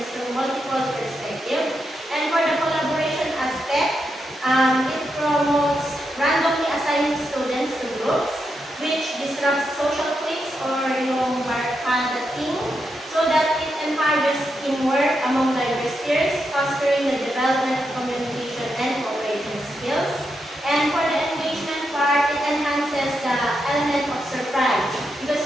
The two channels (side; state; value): both; normal; correlation 0.84